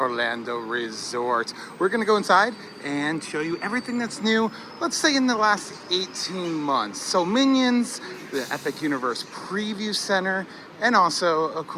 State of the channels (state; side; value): identical; both; correlation 1.00